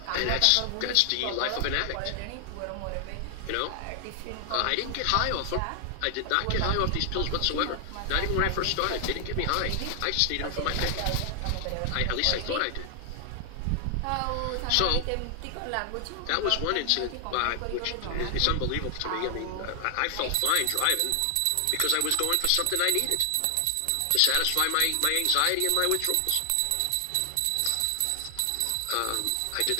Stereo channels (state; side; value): different; both; correlation 0.00